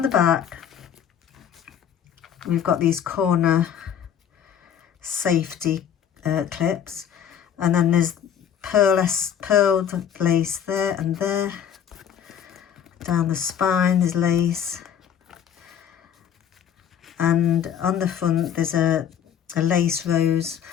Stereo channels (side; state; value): right; quieter; 9.0 dB